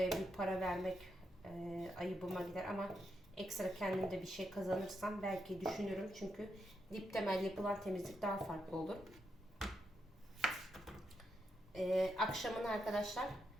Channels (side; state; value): both; normal; correlation 0.82